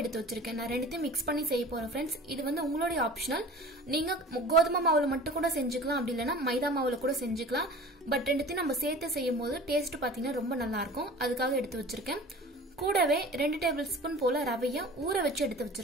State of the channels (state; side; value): normal; both; correlation 0.40